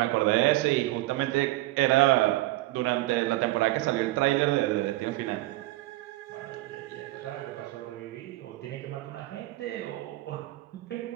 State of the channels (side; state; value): left; quieter; 18.0 dB